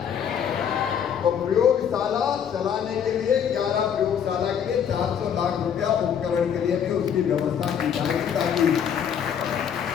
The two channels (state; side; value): quieter; right; 8.2 dB